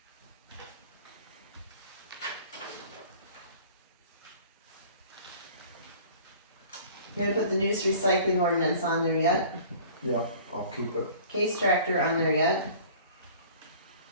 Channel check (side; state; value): both; inverted; correlation -0.47